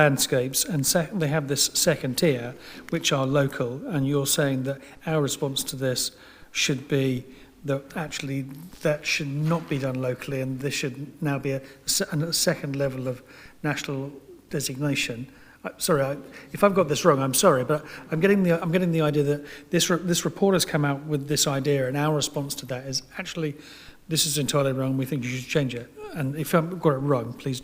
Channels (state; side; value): identical; both; correlation 1.00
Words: and they have this second tier, which are local, and you're saying that our response to this should be that actually that should not be done locally, and this should now be a second level of national designation. Sorry, if I've got this wrong, I'm sorry, but I'm getting the idea that this report has come out with this idea, and our response to that is actually, this is entirely wrong. We think you should change it. And if I've got it wrong, please